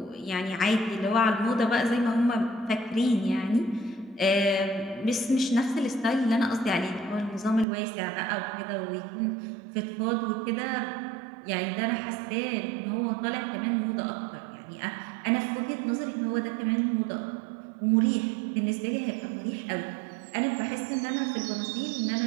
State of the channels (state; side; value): drops out; left; at 7.7 s